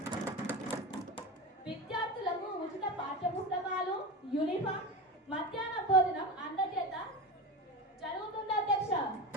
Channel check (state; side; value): normal; both; correlation 0.24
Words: విద్యార్థులకు ఉచిత పాఠ్య పుస్తకాలు, యూనిఫామ్, మధ్యాహ్న భోజనం అందజేత జరుగుతుంది అధ్యక్ష.